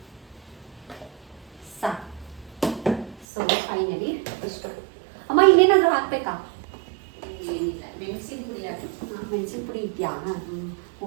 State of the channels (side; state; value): left; drops out; at 3.2 s